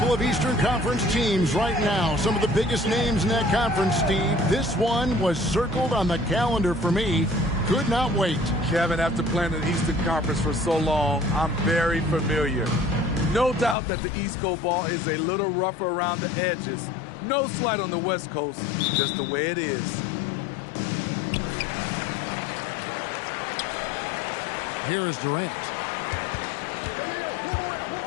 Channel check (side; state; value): right; drops out; at 13.8 s